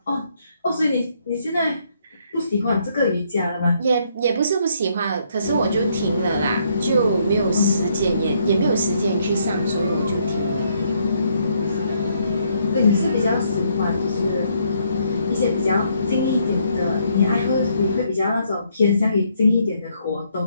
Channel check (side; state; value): both; inverted; correlation -0.71